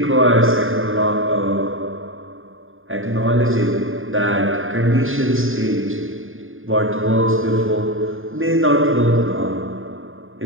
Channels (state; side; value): late; left; 0.59 ms